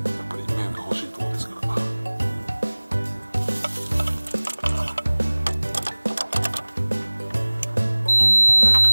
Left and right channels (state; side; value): inverted; both; correlation -1.00